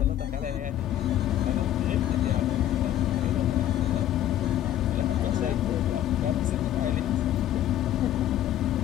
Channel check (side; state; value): right; quieter; 12.0 dB